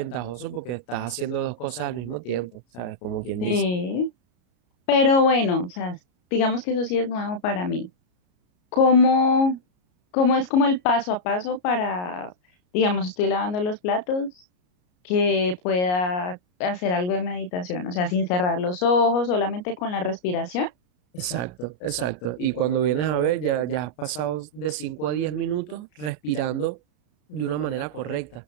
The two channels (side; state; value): right; late; 33 ms